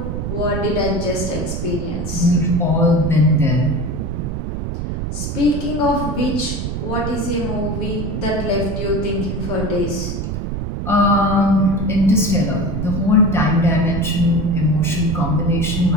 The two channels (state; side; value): noise; right; rumble, 4 dB below the sound